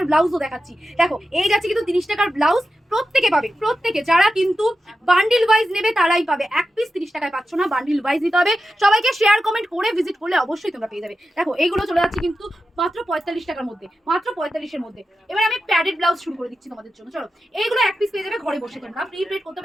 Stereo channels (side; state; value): both; normal; correlation 0.91